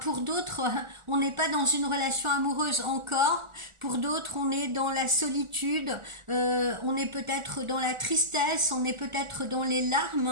d'autres, on n'est pas dans une relation amoureuse encore. Pour d'autres, on est dans la solitude, on est peut-être dans la tristesse, on est peut-être dans les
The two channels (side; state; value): left; late; 1.4 ms